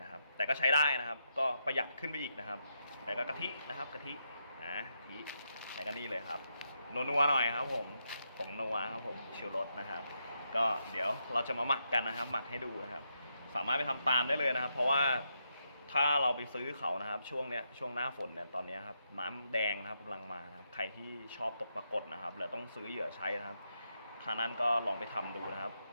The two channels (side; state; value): both; inverted; correlation -0.82